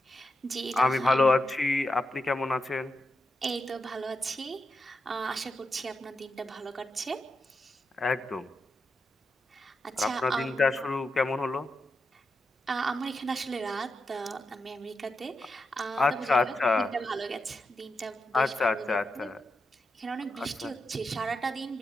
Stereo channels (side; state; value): both; normal; correlation 0.86